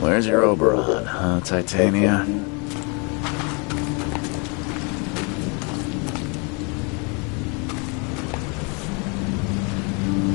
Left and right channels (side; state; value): right; quieter; 33.2 dB